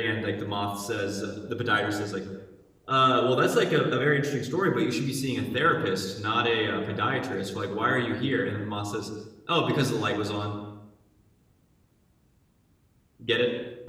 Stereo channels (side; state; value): both; identical; correlation 1.00